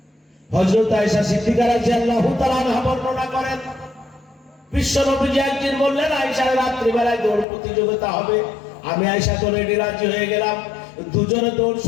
হযরত আয়েশা সিদ্দিকা রাদিয়াল্লাহু তাআলা আনহা বর্ণনা করেন, বিশ্ব নবীজি একদিন বললেন, আয়েশা রাত্রি বেলায় দৌড় প্রতিযোগিতা হবে। আমি আয়েশা তো রেডি, রাজি হয়ে গেলাম। দুজনে দৌড়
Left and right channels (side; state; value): right; drops out; at 7.5 s